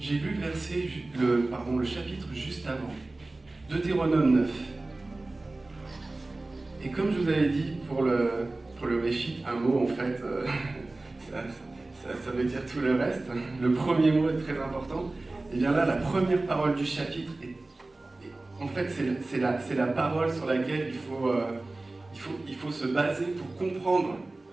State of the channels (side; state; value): left; quieter; 3.0 dB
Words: lu le verset, le chapitre juste avant, Deutéronome 9. Et comme je vous avais dit, pour le réchit, un mot en fait, ça veut dire tout le reste. Le premier mot est très important. Et bien là, la première parole du chapitre, en fait, c'est la parole sur laquelle il faut se baser pour comprendre